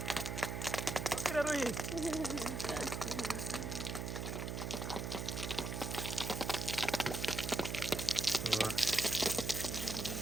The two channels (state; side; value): noise; right; hum, 3 dB below the sound